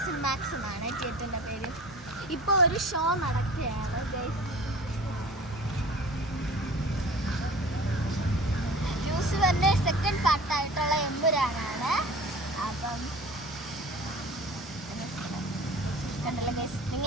സിനിമാക്സ് എന്നാണ് തിയേറ്ററിൻ്റെ പേര്. ഇപ്പോൾ ഒരു ഷോ നടക്കുകയാണ് ഗൈസ്. യൂസുവറിൻ്റെ സെക്കൻഡ് പാർട്ടായിട്ടുള്ള എമ്പുരാനാണ്. അപ്പം കണ്ടല്ലോ ഗൈസ്,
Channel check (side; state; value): both; normal; correlation 0.41